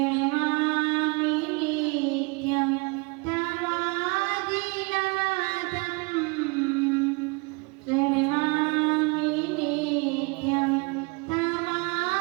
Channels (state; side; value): quieter; left; 29.4 dB